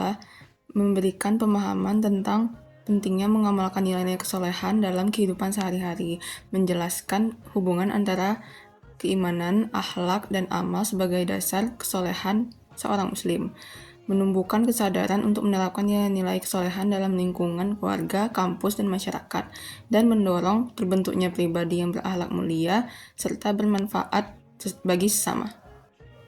memberikan pemahaman tentang pentingnya mengamalkan nilai-nilai kesolehan dalam kehidupan sehari-hari, menjelaskan hubungan antara keimanan, akhlak, dan amal sebagai dasar kesolehan seorang muslim, menumbuhkan kesadaran untuk menerapkan nilai-nilai kesolehan dalam lingkungan keluarga, kampus, dan masyarakat, dan mendorong terbentuknya pribadi yang berakhlak mulia serta bermanfaat bagi sesama.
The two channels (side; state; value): both; identical; correlation 1.00